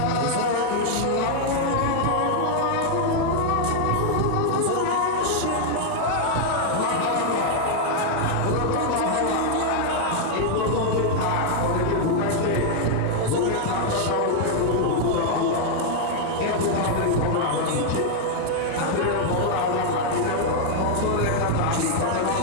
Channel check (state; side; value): different; both; correlation 0.00